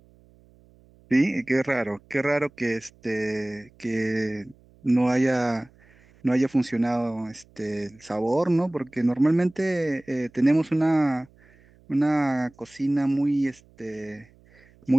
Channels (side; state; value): right; noise; hum, 29 dB below the sound